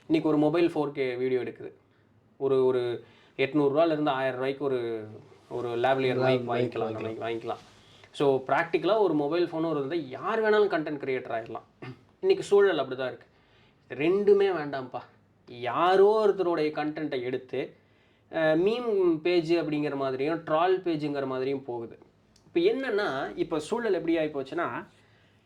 இன்றைக்கி ஒரு மொபைல் 4K வீடியோ எடுக்குது, ஒரு 800 1000 ரூபாய்க்கு ஒரு லேவ்லியர் மைக் வாங்கிக்கலாம், நம்ம வாங்கிக்கலாம். ஸோ ப்ராக்டிக்கலாக ஒரு மொபைல் ஃபோனும் இருந்தால் யார் வேணாலும் கண்டென்ட் க்ரியேட்டர் ஆகிடலாம். இன்றைக்கி சூழல் அப்படி தான் இருக்குது. ரெண்டுமே வேண்டாம்ப்பா, யாரோ ஒருத்தருடைய கண்டென்ட்டை எடுத்து மீம் பேஜ் அப்படிங்கிற மாதிரியும் ட்ரால் பேஜுங்கிற மாதிரியும் போகுது. இப்போ என்னென்னா, இப்போ சூழல் எப்படி ஆகி போச்சுன்னா,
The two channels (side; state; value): both; identical; correlation 1.00